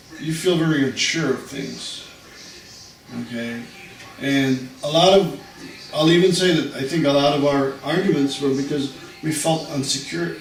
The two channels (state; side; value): identical; both; correlation 1.00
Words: you feel very unsure of things. Okay? And I'll even say that I think a lot of our arguments were because we felt insecure